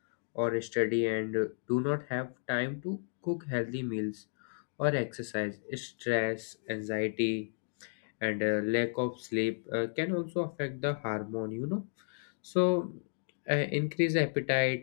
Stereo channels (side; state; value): right; silent; digital silence